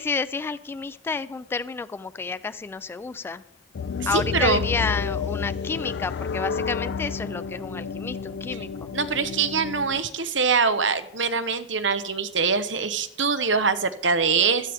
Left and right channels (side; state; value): both; normal; correlation -0.04